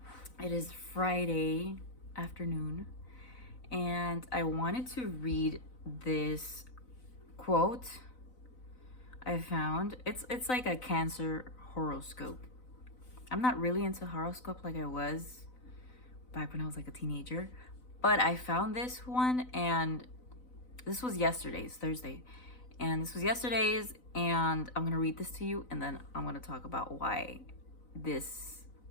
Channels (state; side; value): late; right; 4.0 ms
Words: It is Friday afternoon, and I wanted to read this quote I found. It's like a Cancer horoscope. I'm not really into horoscope like I was back when I was like a teenager, but I found this one, and this was yesterday's, Thursday. And this was yesterday's, and I'm gonna read this to you, and then I'm gonna talk about why this